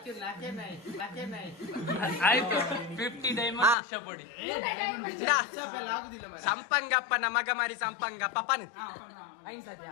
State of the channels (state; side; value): drops out; right; at 3.8 s